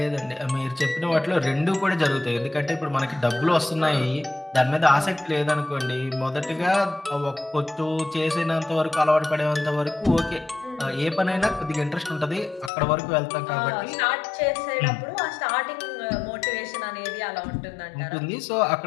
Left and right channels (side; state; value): right; drops out; at 12.7 s